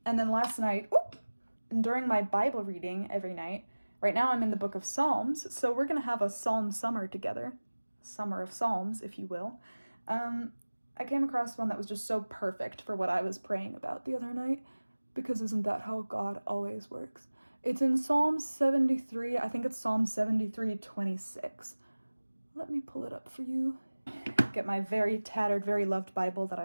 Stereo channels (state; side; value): inverted; both; correlation -1.00